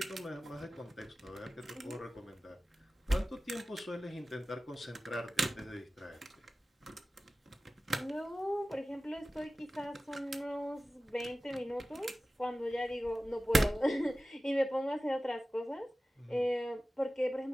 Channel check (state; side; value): normal; both; correlation 0.96